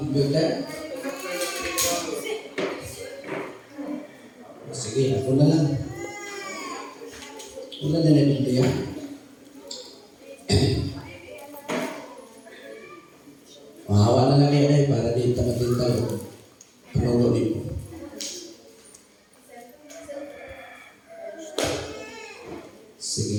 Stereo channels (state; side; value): identical; both; correlation 1.00